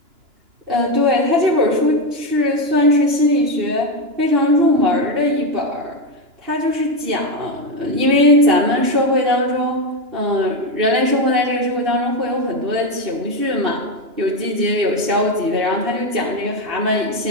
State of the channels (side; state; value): left; late; 2.9 ms